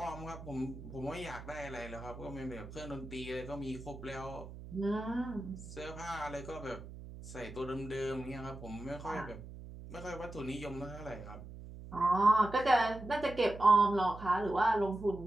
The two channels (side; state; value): right; noise; hum, 13 dB below the sound